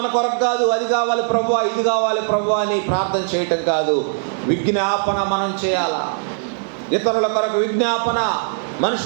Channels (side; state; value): left; silent; 66 dB below the other